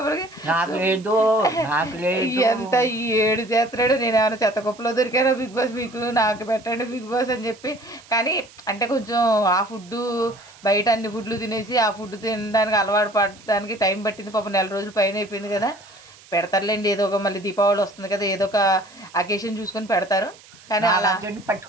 ఎంత ఏడు చేస్తున్నాడు. నేను ఏమైనా చెత్త కుప్పలో దొరికానో బిగ్ బాస్ మీకు, నాకు పెట్టండి బిగ్ బాస్ అని చెప్పి. కానీ అంటే కొంచెం ఆ ఫుడ్డు బయట అన్ని ఫుడ్లు తినేసి ఆ ఫుడ్ తినడానికి అలవాటు పడడానికి టైం పట్టింది. పాపం 4 రోజులు పైన అయిపోయింది కదా. పెడతారులేండి, ఏదో ఒక మళ్ళీ దీపావళి వస్తుంది కదా, ఏదో ఒక అకేషన్ చూసుకొని పెడతారు. కానీ అలా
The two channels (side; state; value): right; noise; hiss, 23 dB below the sound